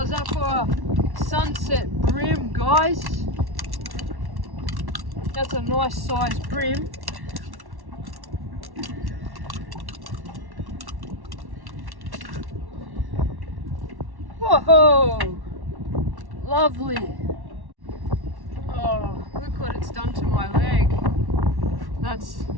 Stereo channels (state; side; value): late; left; 1.1 ms